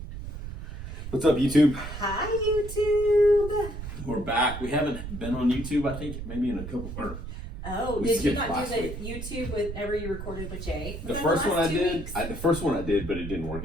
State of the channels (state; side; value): noise; right; rumble, 9 dB below the sound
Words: What's up, YouTube? Hi, YouTube. We're back. We haven't been on YouTube, I think, maybe in a couple. Did you not do the YouTube whenever you recorded with Jay? The first one I did. The first one I did, but it didn't work